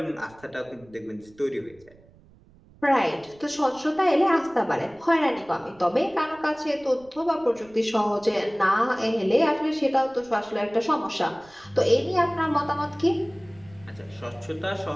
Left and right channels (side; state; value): right; noise; rumble, 27 dB below the sound